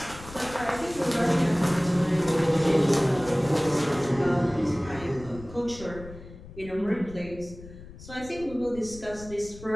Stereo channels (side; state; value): left; noise; rumble, 16 dB below the sound